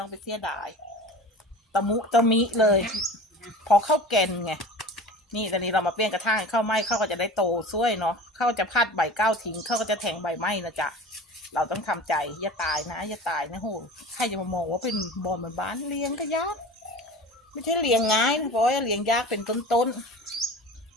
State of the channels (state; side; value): normal; both; correlation 0.37